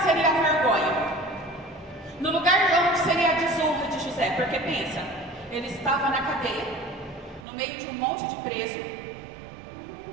a vergonha, no lugar de onde seria a desonra de José, porque pensa, ele estava na cadeia, no meio de um monte de preso,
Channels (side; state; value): left; drops out; at 7.5 s